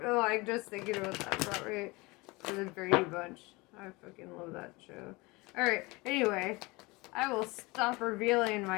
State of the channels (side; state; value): right; quieter; 24.1 dB